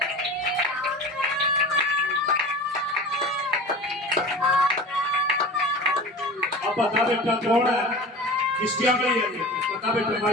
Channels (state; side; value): normal; both; correlation 0.35